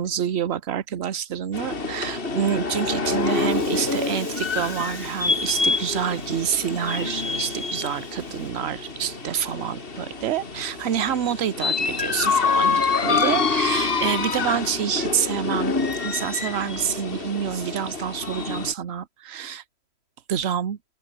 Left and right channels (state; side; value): late; left; 3.1 ms